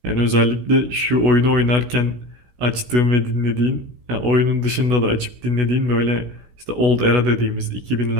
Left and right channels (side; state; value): left; late; 16 ms